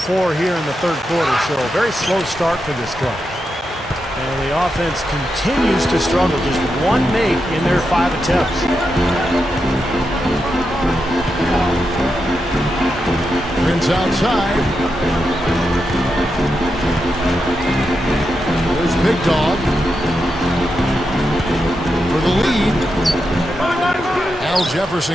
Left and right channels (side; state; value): both; normal; correlation 0.86